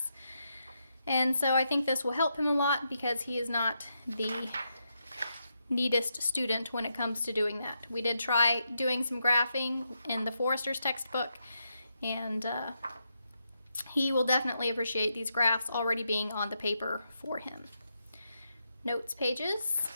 And so I think this will help him a lot because he is not the neatest student when it comes to doing that. We did try doing some graphing in the Forester's textbook, and he will definitely appreciate these graphs already being on the paper for him. Notes pages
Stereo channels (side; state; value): both; inverted; correlation -0.83